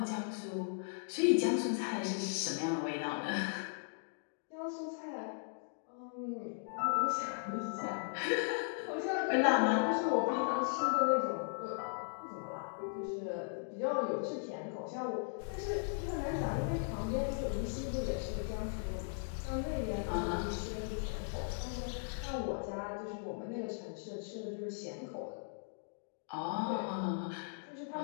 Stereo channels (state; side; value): silent; right; digital silence